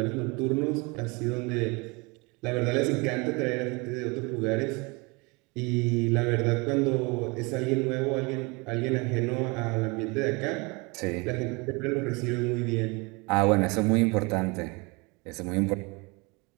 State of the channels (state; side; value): quieter; left; 27.6 dB